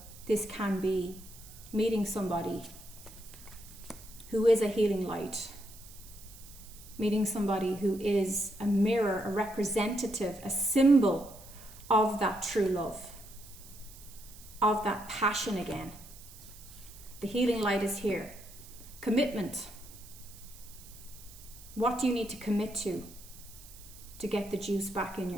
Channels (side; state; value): right; noise; hiss, 19 dB below the sound